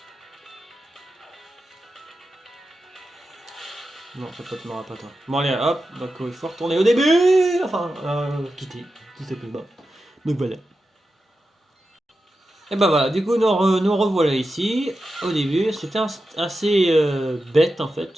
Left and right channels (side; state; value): both; normal; correlation 0.90